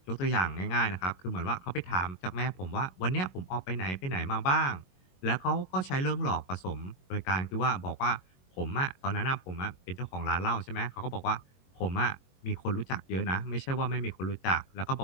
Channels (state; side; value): late; right; 22 ms